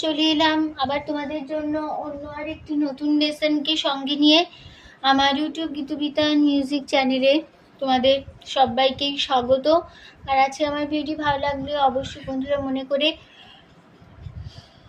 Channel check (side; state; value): both; identical; correlation 1.00